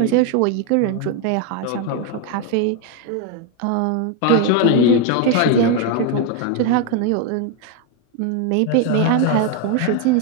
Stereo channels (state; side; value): different; both; correlation 0.01